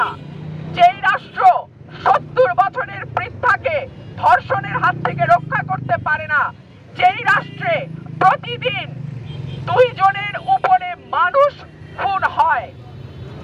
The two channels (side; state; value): both; identical; correlation 1.00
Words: যেই রাষ্ট্র 70 বছরের বৃদ্ধাকে ধর্ষণের হাত থেকে রক্ষা করতে পারে না, যেই রাষ্ট্রে প্রতিদিন 2 জনের উপরে মানুষ খুন হয়,